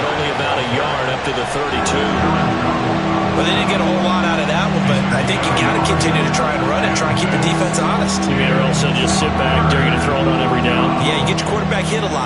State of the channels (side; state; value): both; identical; correlation 1.00